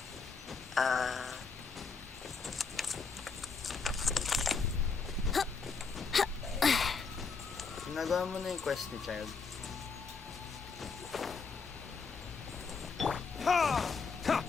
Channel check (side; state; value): right; quieter; 4.9 dB